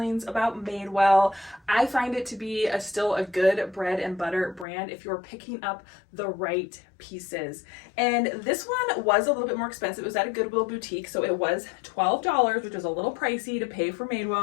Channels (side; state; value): right; drops out; at 4.7 s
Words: about Madewell. I find it to be still a good bread and butter brand if you're picking up the right pieces. And this one was a little bit more expensive. It was at a Goodwill boutique, so it was $12, which was a little pricey to pay for